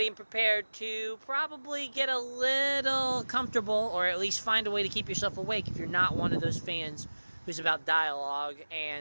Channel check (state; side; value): inverted; both; correlation -1.00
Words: and prepared to probably get a little comfortable, or at least find a way to keep yourself awake if you're not one of those fans who's about dialogue